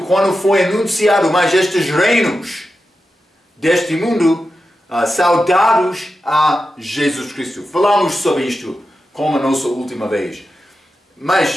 foi anunciado mais estes reinos deste mundo, saudados a Jesus Cristo. Falamos sobre isto como a nossa última vez.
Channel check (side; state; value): both; normal; correlation 0.91